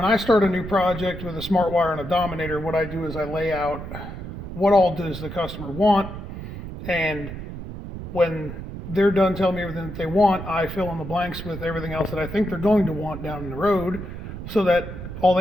I start a new project with a Smartwire and a Dominator, what I do is I lay out what all does the customer want, and when they're done telling me everything that they want, I fill in the blanks with everything else that I think they're going to want down the road, so that all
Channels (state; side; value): noise; right; rumble, 9 dB below the sound